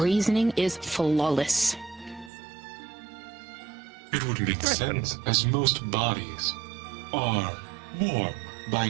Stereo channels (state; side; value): drops out; left; at 2.3 s